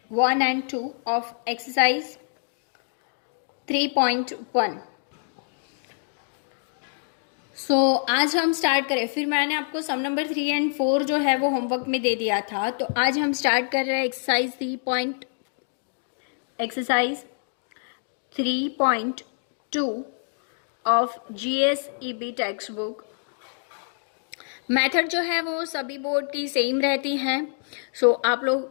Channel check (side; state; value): right; silent; digital silence